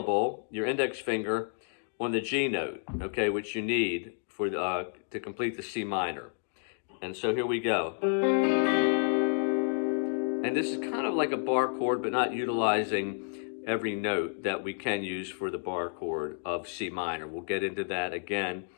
your index finger, on the G note, okay, which you need for to complete the C minor. And so here we go. And this is kind of like a bar chord, but not utilizing every note that we can use for the bar chord of C minor. We'll get into that again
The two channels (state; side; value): silent; right; 57 dB below the other